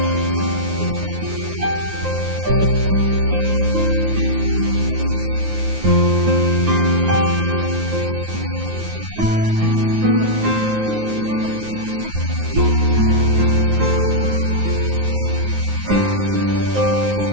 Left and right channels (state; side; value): late; left; 9.5 ms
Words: está nuestro corazón, a dónde está infilado nuestro corazón, hacia dónde está dirigido. Y todas estas cosas nos deben llevar a reflexionar en realidad cuál es la motivación de nuestro corazón y qué es lo que nosotros debemos hacer en el nombre poderoso de Yahshua.